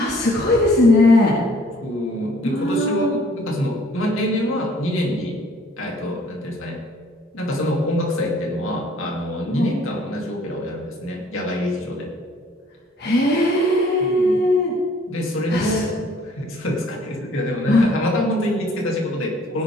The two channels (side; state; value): both; normal; correlation 0.58